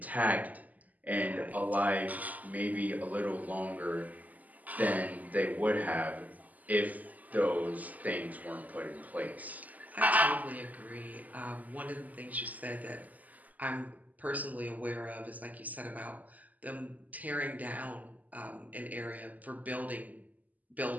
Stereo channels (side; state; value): left; late; 0.079 ms